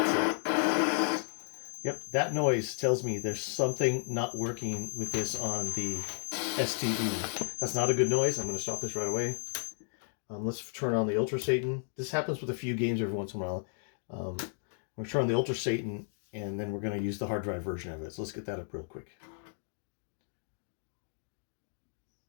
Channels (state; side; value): silent; right; digital silence